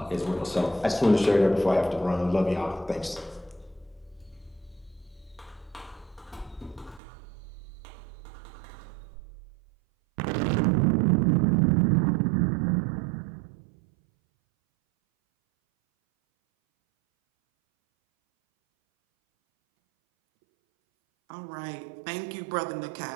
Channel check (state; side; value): drops out; left; at 7.0 s